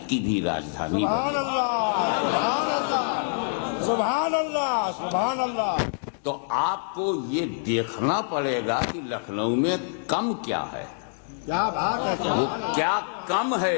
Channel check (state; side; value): silent; right; digital silence